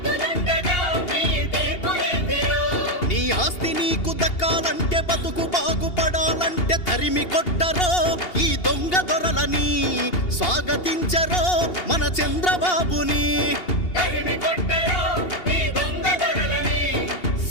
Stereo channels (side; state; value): right; late; 2.8 ms